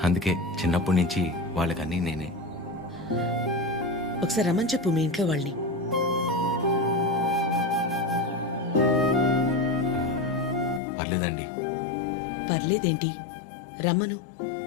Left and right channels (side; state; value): right; drops out; at 10.8 s